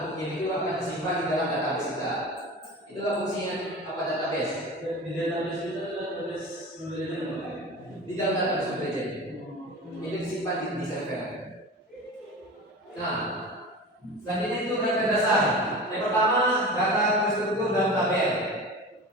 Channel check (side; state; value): both; normal; correlation 0.32